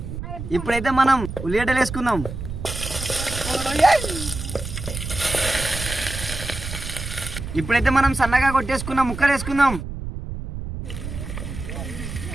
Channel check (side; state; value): right; noise; rumble, 8 dB below the sound